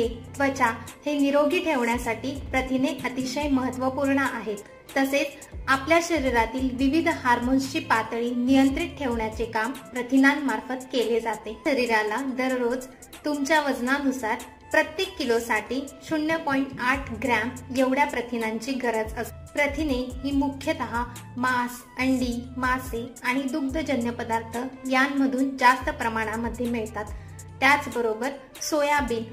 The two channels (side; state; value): both; identical; correlation 1.00